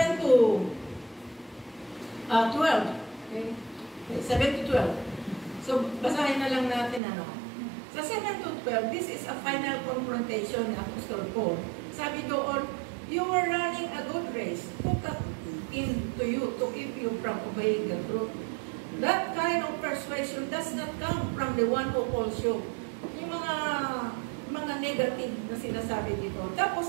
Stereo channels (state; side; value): drops out; left; at 7.0 s